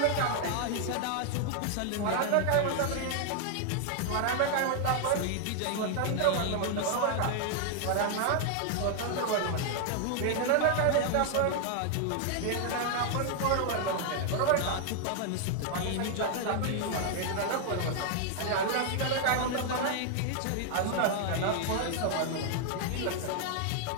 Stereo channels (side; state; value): both; different; correlation 0.00